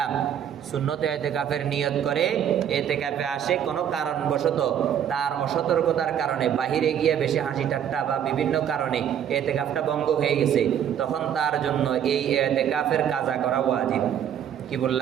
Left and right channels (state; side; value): quieter; left; 9.3 dB